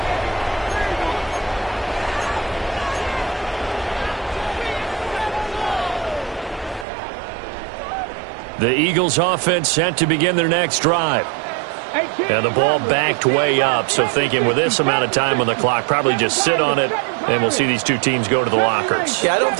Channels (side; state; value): left; drops out; at 6.9 s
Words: The Eagles offense set to begin their next drive. And the ball backed way up, so thinking with this amount of time on the clock, probably just sit on it, and we'll see these two teams go to the lockers. Yeah, I don't